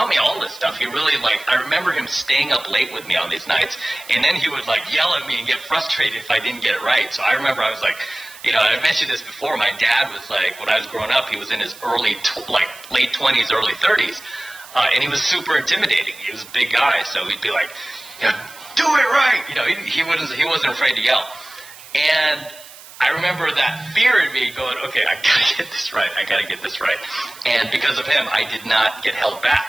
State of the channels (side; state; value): right; noise; hiss, 19 dB below the sound